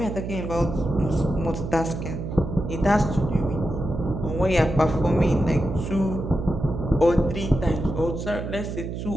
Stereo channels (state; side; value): noise; right; hum, 6 dB below the sound